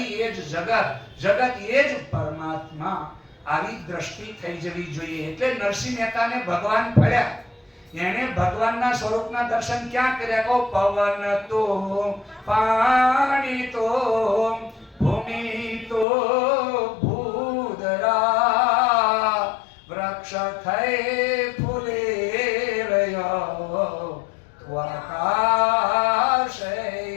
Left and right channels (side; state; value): right; drops out; at 16.1 s